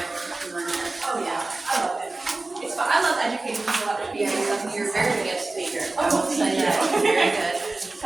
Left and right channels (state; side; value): quieter; left; 3.2 dB